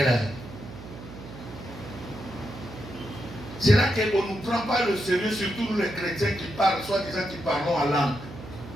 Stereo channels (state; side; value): noise; right; hum, 14 dB below the sound